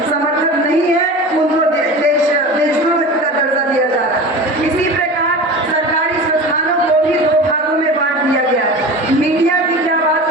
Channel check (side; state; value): both; normal; correlation 0.33